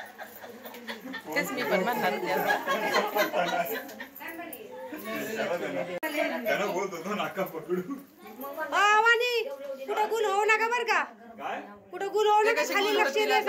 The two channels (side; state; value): both; identical; correlation 1.00